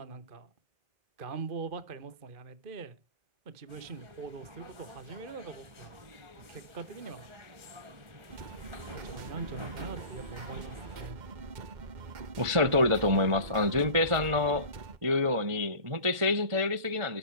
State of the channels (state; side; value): late; left; 1.5 ms